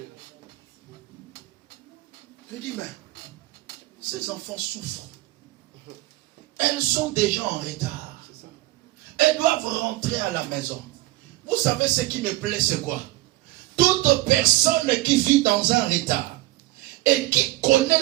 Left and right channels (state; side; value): quieter; left; 17.9 dB